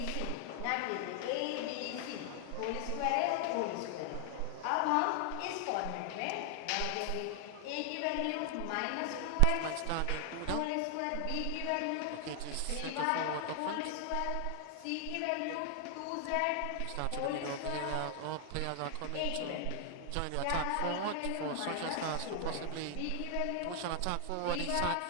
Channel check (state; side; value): different; both; correlation 0.00